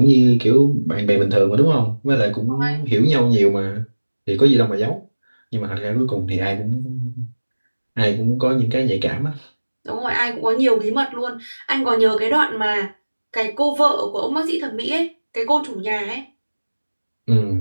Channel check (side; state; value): both; inverted; correlation -1.00